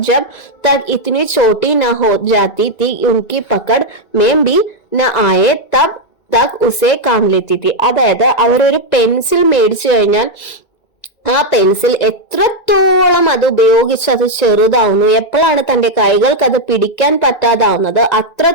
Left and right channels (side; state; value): right; late; 2.2 ms